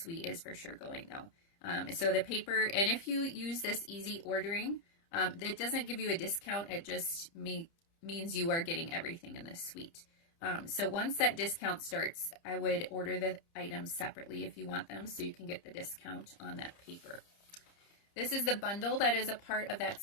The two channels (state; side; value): late; right; 30 ms